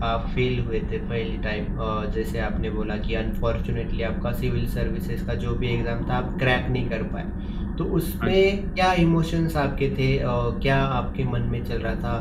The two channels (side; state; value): both; identical; correlation 1.00